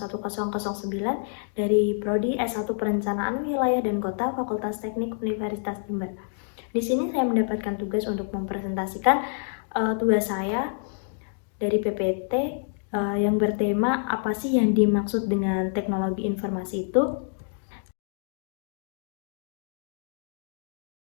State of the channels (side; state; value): right; silent; digital silence